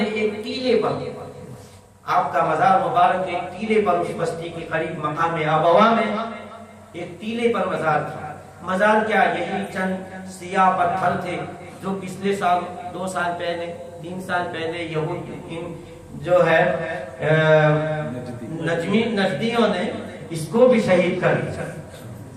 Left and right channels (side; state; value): both; identical; correlation 1.00